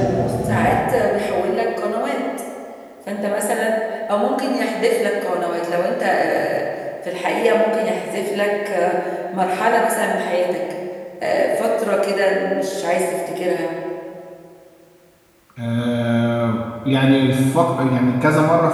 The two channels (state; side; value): identical; both; correlation 1.00